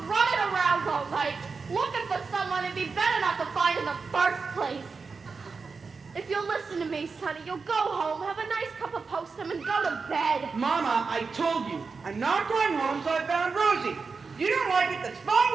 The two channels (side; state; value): left; quieter; 4.8 dB